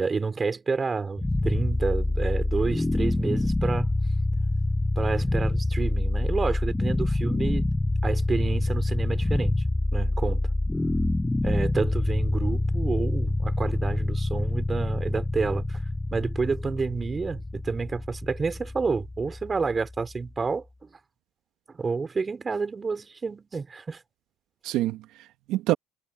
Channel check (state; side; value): normal; both; correlation 0.93